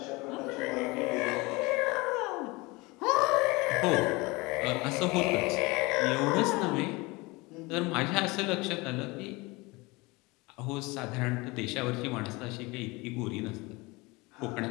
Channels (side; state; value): right; quieter; 24.2 dB